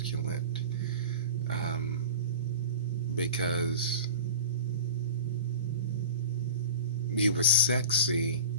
because you were sexy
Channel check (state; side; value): inverted; both; correlation -0.36